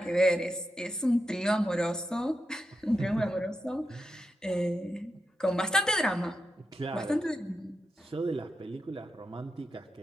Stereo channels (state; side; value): normal; both; correlation 0.87